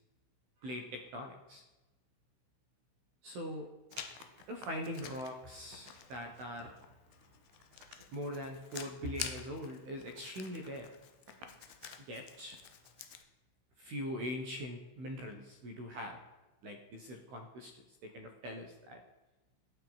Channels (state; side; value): late; left; 15 ms